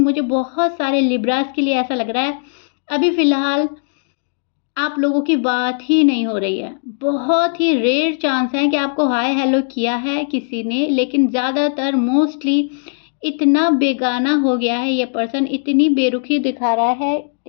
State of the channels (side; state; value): right; silent; digital silence